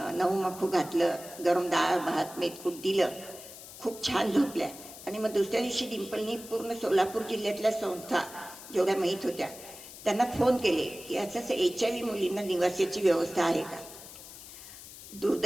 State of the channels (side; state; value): left; noise; hiss, 15 dB below the sound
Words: 9 मखू घातलं, गरम डाळ भात मेथकूट दिलं, खूप छान झोपल्या. आणि मग दुसऱ्या दिवशी डिंपलनी पूर्ण सोलापूर जिल्ह्यातल्या संस्था जेवढ्या माहीत होत्या त्यांना फोन केले की असं HIV मुलींना निवासाची व्यवस्था आहे का.